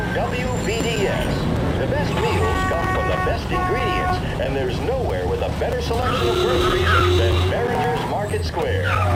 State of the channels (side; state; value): both; identical; correlation 1.00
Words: WVDS. The best meals come from the best ingredients, and there's nowhere with a better selection of groceries than Behringer's Market Square.